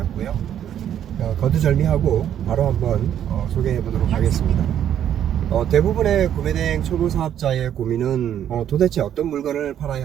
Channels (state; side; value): quieter; left; 10.1 dB